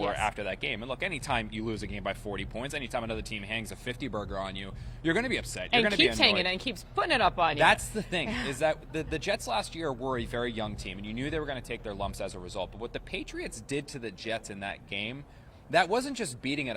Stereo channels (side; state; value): both; identical; correlation 1.00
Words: after that game. And look, anytime you lose a game by 40 points, anytime another team hangs a 50-burger on you, you're going to be upset. You're going to be annoyed. And keeps hanging and keeps putting it up on you. That's the thing, is that the Jets last year were a very young team, and you knew they were going to take their lumps as a result. But what the Patriots did to the Jets in that game, that wasn't just beating an